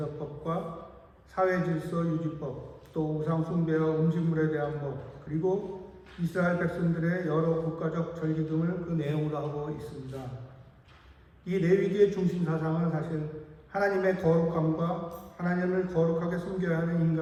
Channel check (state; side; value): identical; both; correlation 1.00